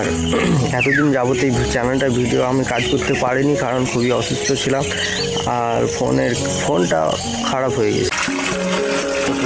এতদিন যাবত এই চ্যানেলটা ভিডিও আমি কাজ করতে পারিনি, কারণ খুবই অসুস্থ ছিলাম আর ফোনটা খারাপ হয়ে গেছে।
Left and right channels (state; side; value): identical; both; correlation 1.00